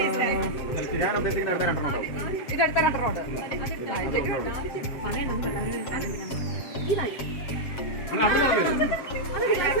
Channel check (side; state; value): right; late; 7.5 ms